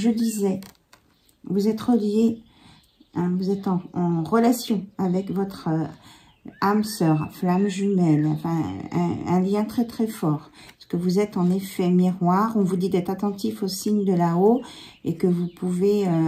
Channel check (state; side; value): identical; both; correlation 1.00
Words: disais, vous êtes relié, hein, vous êtes en relation avec votre âme sœur, flamme jumelle, enfin un lien très très fort. Parce que vous êtes en effet miroir. On vous dit d'être attentif aux signes de là-haut et que vous pouvez